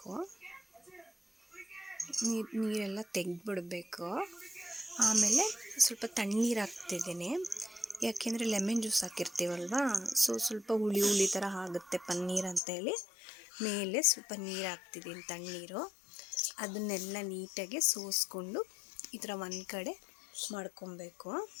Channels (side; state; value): right; drops out; at 12.6 s